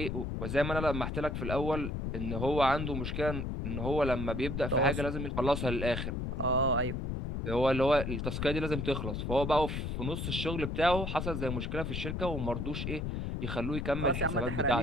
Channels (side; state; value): left; noise; rumble, 3 dB below the sound